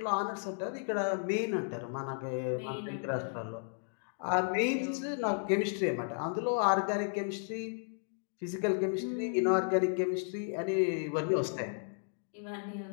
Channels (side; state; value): right; silent; digital silence